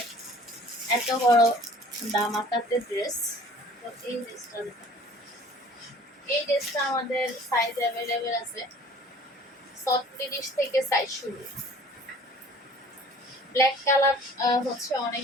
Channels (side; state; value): both; normal; correlation 0.50